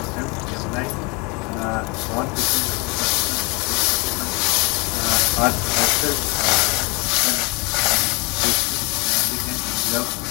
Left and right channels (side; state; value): right; quieter; 28.8 dB